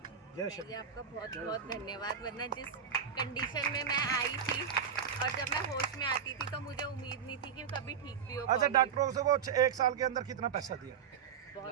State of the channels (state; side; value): quieter; left; 7.4 dB